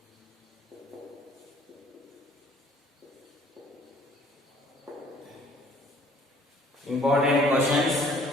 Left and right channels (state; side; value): normal; both; correlation 0.56